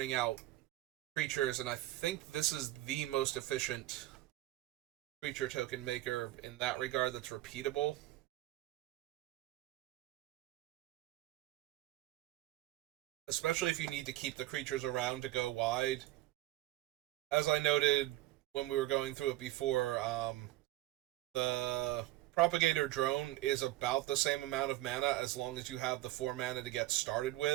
out creatures, and I think this is the most efficient creature token maker in that regard that's repeatable. Especially if you need to keep the creatures around to go wide. As I noted when we were going through it before, the Propagator Drone is about the same amount of mana as long as you have the 4 mana to get started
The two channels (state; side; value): quieter; left; 16.4 dB